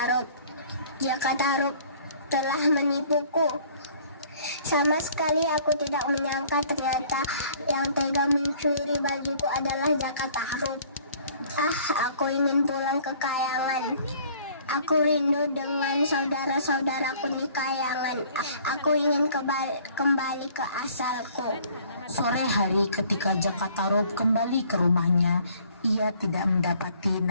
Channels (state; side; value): inverted; both; correlation -0.56